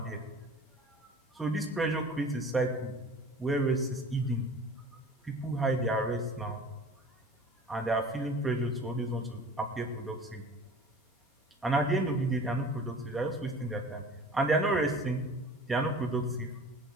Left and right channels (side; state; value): both; normal; correlation 0.43